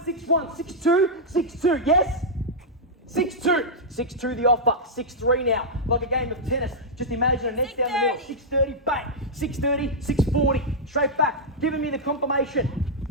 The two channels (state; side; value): normal; both; correlation -0.07